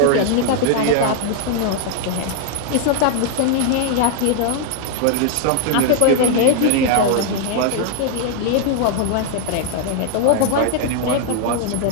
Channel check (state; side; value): different; both; correlation 0.00